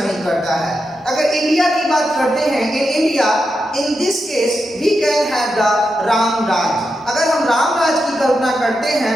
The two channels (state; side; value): normal; both; correlation 0.87